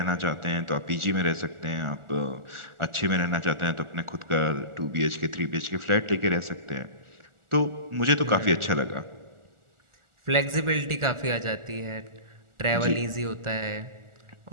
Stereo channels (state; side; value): late; left; 1.4 ms